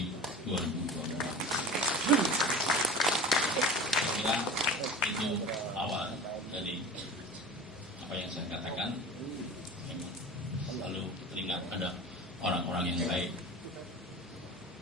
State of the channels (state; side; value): normal; both; correlation 0.35